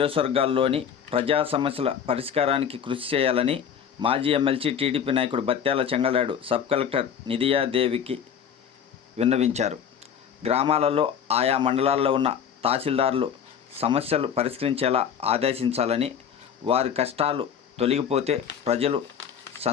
ప్రజా సమస్యల పరిష్కారానికి కృషి చేయాలని మాజీ ఎమ్మెల్సీ టీడీపీ నాయకుడు బత్యాల చెంగల్రాయుడు సబ్ కలెక్టర్ నిధియాదేవికి విన్నవించారు. గ్రామాలలో ఆయా మండలాల్లో ఉన్న తహసీల్దార్లు సమస్యలు పరిష్కరించేలా ఆదేశించాలని, వారి కష్టాలు తొలగిపోతే ప్రజలు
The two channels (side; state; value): right; quieter; 8.0 dB